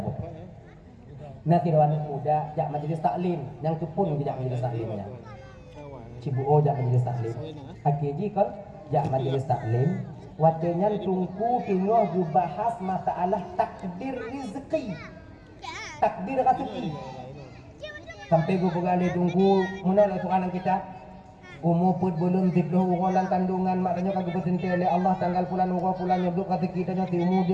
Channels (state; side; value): identical; both; correlation 1.00